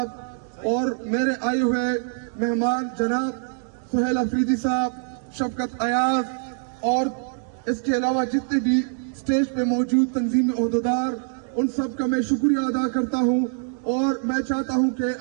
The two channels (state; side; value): silent; left; 58 dB below the other